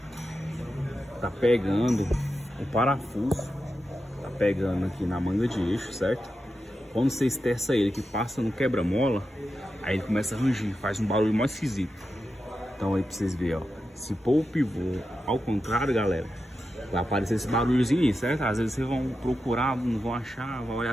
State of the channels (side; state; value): both; normal; correlation 0.89